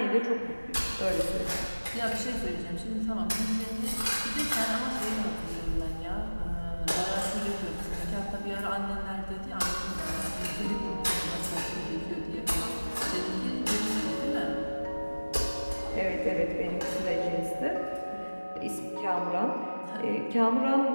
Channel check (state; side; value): inverted; both; correlation -1.00